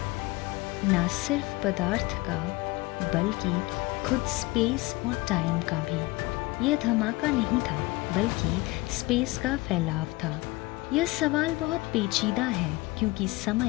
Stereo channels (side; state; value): right; quieter; 21.6 dB